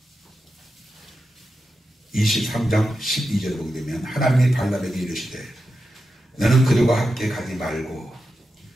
23장 12절 보게 되면 하나님이 발람에게 이르시되 너는 그들과 함께 가지 말고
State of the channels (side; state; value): both; normal; correlation 0.90